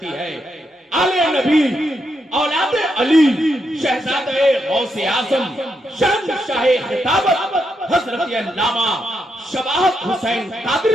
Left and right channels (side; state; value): both; normal; correlation 0.82